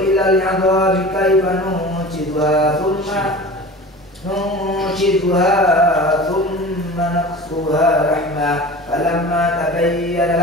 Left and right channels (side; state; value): both; normal; correlation 0.36